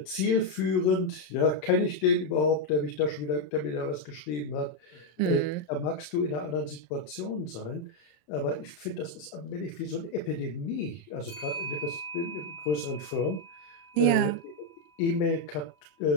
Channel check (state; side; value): late; right; 27 ms